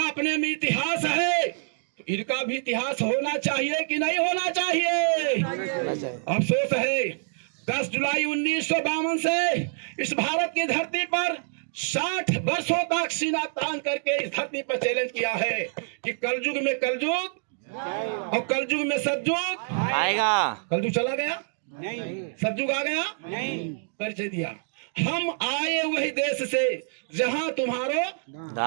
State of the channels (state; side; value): silent; left; digital silence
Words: अपने में इतिहास है। तो इनका भी इतिहास होना चाहिए कि नहीं होना चाहिए? अफसोस है 10 जुलाई 1952 से इस भारत की धरती पर 60 वर्षों तक सीना तान करके इस धरती पर चैलेंज किया है कि कलयुग में कलयुग और कलयुग में सतयुग आएगा। कलयुग चला गया, नहीं। सतयुग आ गया, नहीं। परिचय दिया। हम आए वही देश से जहां तुम्हारो